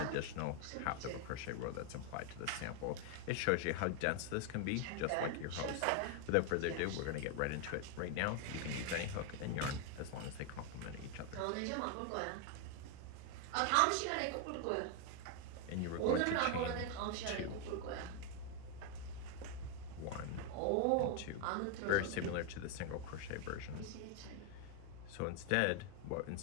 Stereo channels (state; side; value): different; both; correlation 0.01